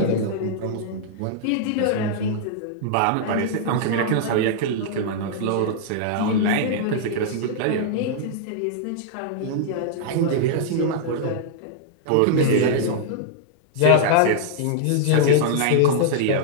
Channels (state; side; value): different; both; correlation -0.01